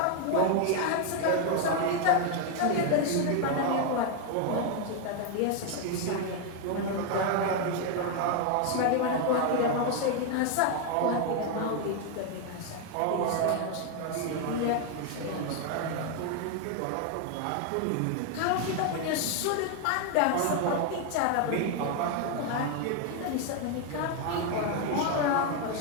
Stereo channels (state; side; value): different; both; correlation 0.01